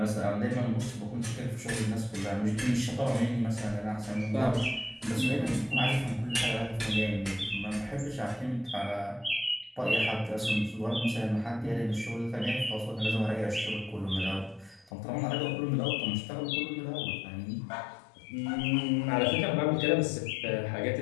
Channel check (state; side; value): drops out; right; at 14.9 s